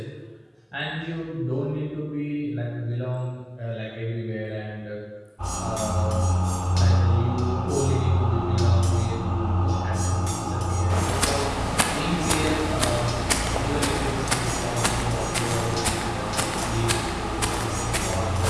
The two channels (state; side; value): identical; both; correlation 1.00